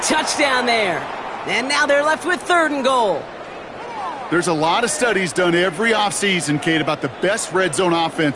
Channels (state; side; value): identical; both; correlation 1.00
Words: there. And now they're left with third and goal. There's a lot of studies done every offseason, Kate, about the best red zone